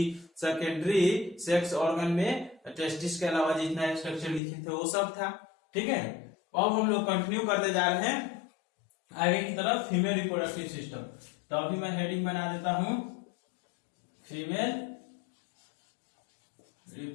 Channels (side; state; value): right; drops out; at 4.4 s